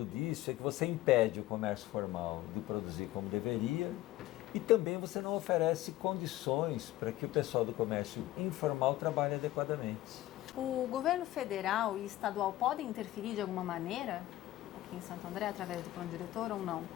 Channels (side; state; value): right; quieter; 15.8 dB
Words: disso é que você impede o comércio formal de produzir como deveria e também você não oferece condições para que o pessoal do comércio informal trabalhe adequadamente. O governo federal e estadual podem interferir de alguma maneira aqui em Santo André, através do plano diretor ou não?